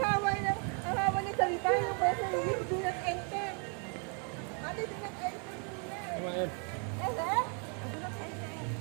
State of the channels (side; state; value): left; quieter; 39.3 dB